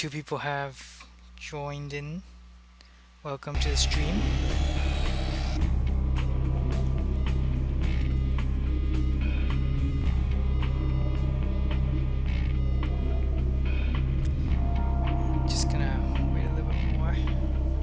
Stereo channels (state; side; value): identical; both; correlation 1.00